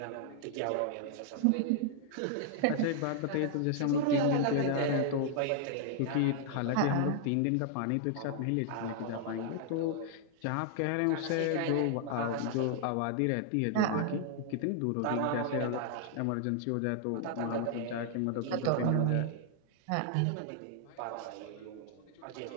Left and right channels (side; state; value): both; different; correlation 0.00